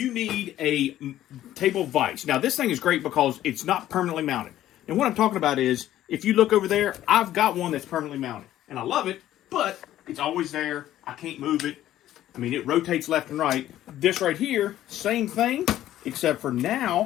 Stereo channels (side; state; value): right; quieter; 13.1 dB